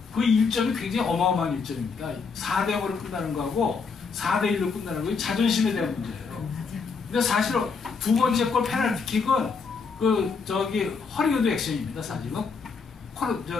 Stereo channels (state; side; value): quieter; right; 5.1 dB